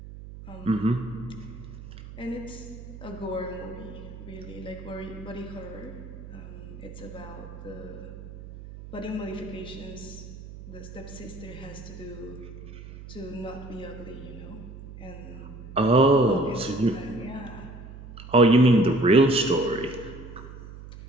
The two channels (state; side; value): noise; right; hum, 14 dB below the sound